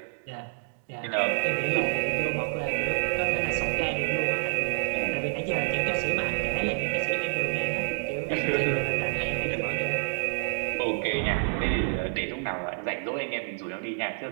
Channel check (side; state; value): left; silent; digital silence